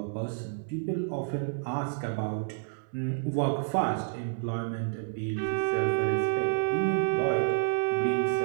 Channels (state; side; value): silent; left; 58 dB below the other